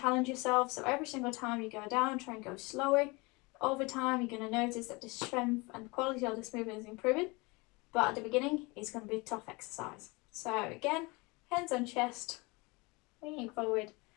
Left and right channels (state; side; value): quieter; right; 26.2 dB